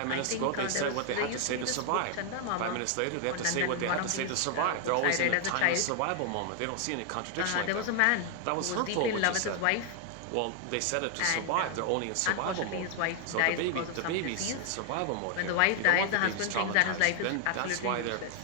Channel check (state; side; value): different; both; correlation 0.00